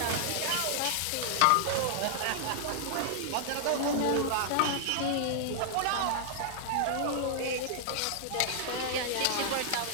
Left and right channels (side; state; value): both; different; correlation -0.01